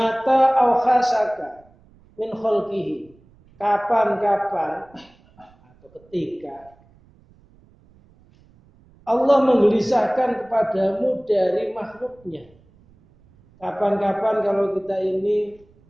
au khasaka min khalqihi, kapan-kapan atau ketika Allah menggelisahkan kepadamu dari makhluknya. Kapan-kapan kalau kita ini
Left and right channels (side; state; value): right; noise; rumble, 29 dB below the sound